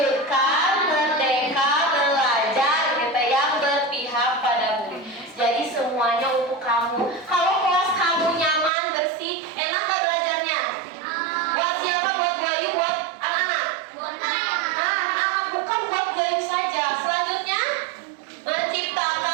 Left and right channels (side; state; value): left; drops out; at 8.7 s